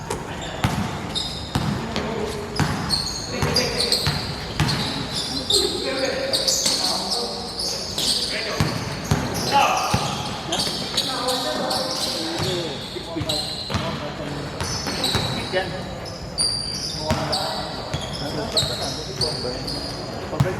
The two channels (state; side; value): identical; both; correlation 1.00